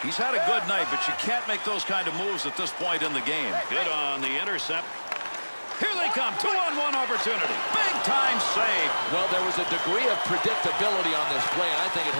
He's had a good night, but you can't make those kind of moves at this point in the game. Good on the intercept. Here they come. 2-on-1 opportunity. Big-time save. Well, there was a degree of predictability on this play, and I think it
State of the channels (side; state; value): both; inverted; correlation -1.00